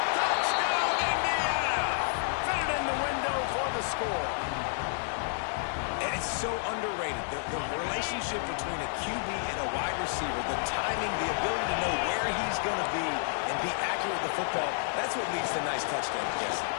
Touchdown, Indiana! Fit it in the window for the score. And it's so underrated. The relationship between a QB and a wide receiver, the timing, the ability to know where he's going to be and be accurate with the football, that's what leads to nice touchdowns, Jesse.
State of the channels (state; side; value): silent; right; digital silence